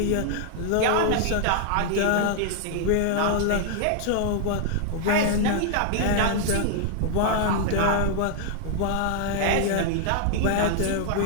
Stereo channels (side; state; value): both; different; correlation 0.00